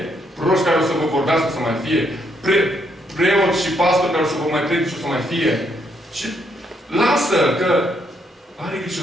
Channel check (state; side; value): normal; both; correlation 0.74